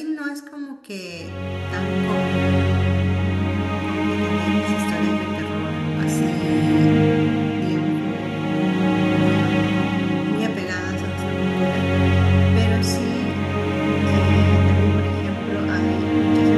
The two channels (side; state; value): both; identical; correlation 1.00